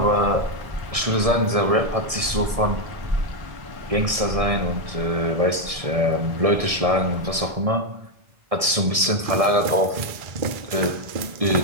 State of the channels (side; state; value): left; late; 1.6 ms